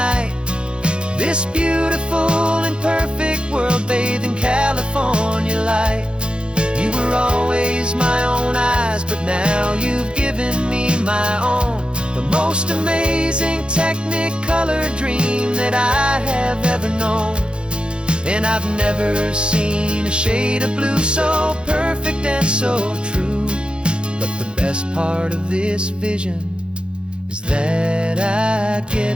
this beautiful and perfect world bathed in California light. You were always my own eyes, but now you've given me my own, the most amazing technicolor dream that I have ever known. And I've never seen a shade of blue so perfect and so true. But the best part of this vision is that I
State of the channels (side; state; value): left; late; 0.054 ms